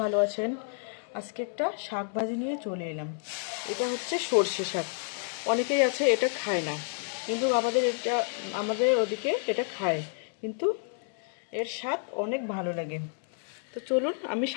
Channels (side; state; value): right; silent; 58 dB below the other